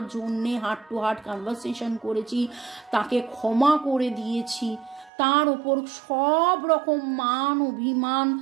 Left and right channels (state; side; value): drops out; left; at 5.1 s